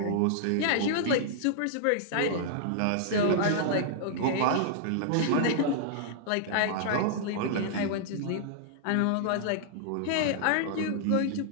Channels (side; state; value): both; different; correlation -0.01